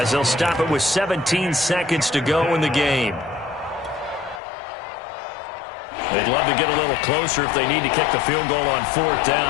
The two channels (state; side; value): drops out; right; at 4.4 s